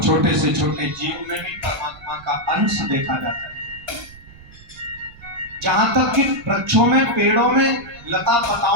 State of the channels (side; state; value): right; noise; rumble, 21 dB below the sound